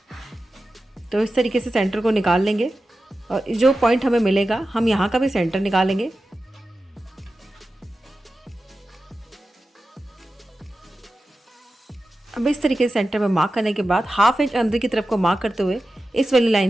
तो इस तरीके से सेंटर को निकाल लेंगे और जो पॉइंट हमें मिलेगा हम यहाँ का भी सेंटर निकालेंगे। अब इस तरीके से सेंटर में मार्क करने के बाद हाफ इंच अंदर की तरफ को मार्क करते हुए इस वाली लाइन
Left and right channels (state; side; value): normal; both; correlation 0.93